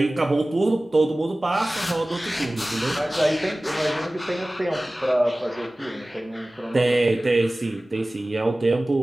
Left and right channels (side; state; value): both; normal; correlation 0.98